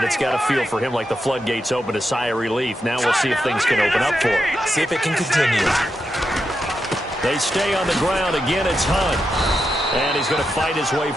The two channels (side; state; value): both; normal; correlation 0.86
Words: it's got to feel for him like the floodgates open, a sigh of relief. Now we'll see if things can open up for him. See if it can continue. They stay on the ground. Again, it's Hunt. And he's going to fight his way